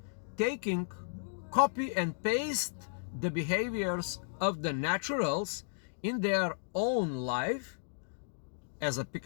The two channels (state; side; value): silent; right; digital silence